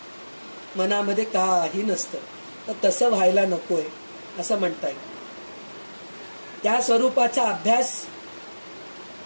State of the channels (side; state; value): both; inverted; correlation -1.00